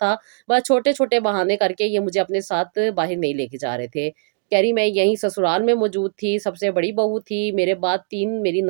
بس چھوٹے چھوٹے بہانے کر کے یہ مجھے اپنے ساتھ باہر نہیں لے کے جا رہے تھے۔ کہہ رہی میں یہیں سسرال میں موجود تھی، سب سے بڑی بہو تھی، میرے بعد 3 میری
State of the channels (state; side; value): silent; left; digital silence